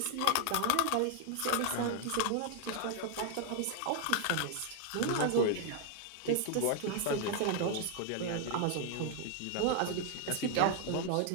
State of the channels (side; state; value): both; different; correlation 0.00